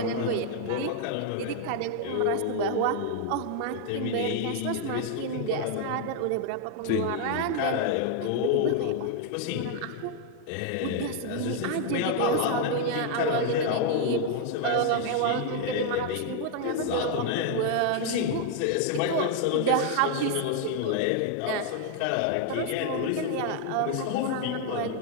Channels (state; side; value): different; both; correlation 0.00